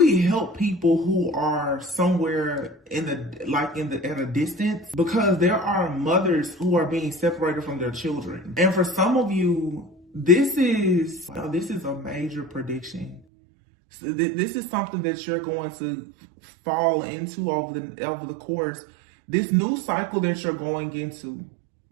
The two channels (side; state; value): left; drops out; at 13.2 s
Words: help people who are somewhere at a distance, because there are mothers who are being separated from their children. And for some of you, this is a major prediction. So this is something that you're going to fall into over the course, this new cycle that you're going into.